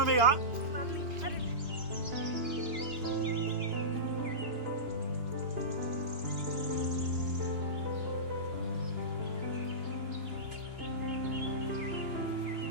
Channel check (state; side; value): late; left; 2.9 ms